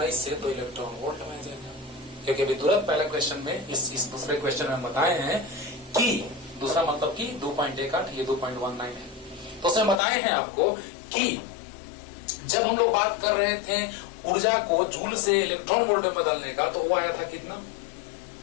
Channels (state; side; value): drops out; right; at 10.0 s